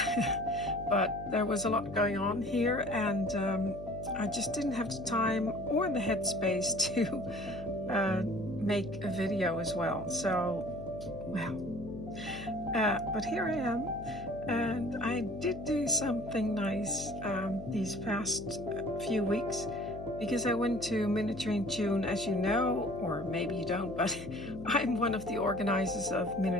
but there was a lot going on here and I just didn't have the time or the headspace to make a video as well. So, well, but here I am, and I did do something nice these past few weeks, because I went to Miniaturist Journal, as you know, or maybe you don't, but I'm one of the organizers of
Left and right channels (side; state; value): left; noise; hum, 12 dB below the sound